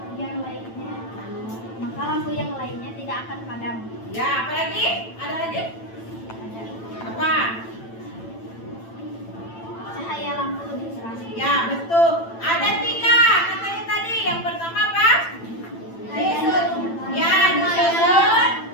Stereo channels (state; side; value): late; right; 8.9 ms